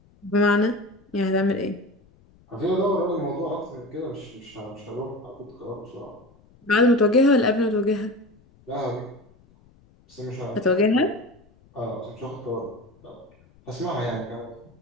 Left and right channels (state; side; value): noise; left; rumble, 29 dB below the sound